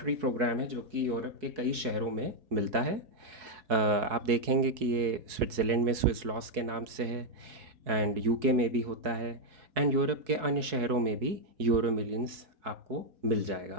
प्रोग्राम है जो कि यूरोप के कई शहरों में मिलता है। आप देखेंगे कि ये स्विट्ज़रलैंड में स्विस लॉस के नाम से है, एंड यूके में भी होता है, एंड यूरोप के अन्य शहरों में भी यूरो मिलियंस आपको मिल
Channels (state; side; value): late; left; 4.7 ms